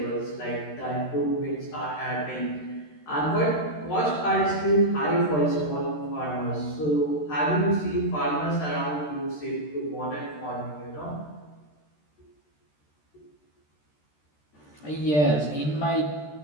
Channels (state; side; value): late; right; 13 ms